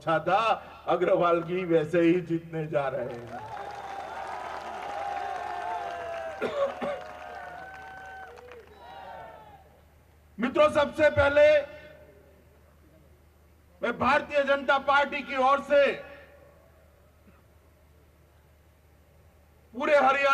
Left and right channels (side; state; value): both; identical; correlation 1.00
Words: था। अग्रवाल जी वैसे ही जीतने जा रहे हैं। मित्रों, सबसे पहले मैं भारतीय जनता पार्टी की ओर से पूरे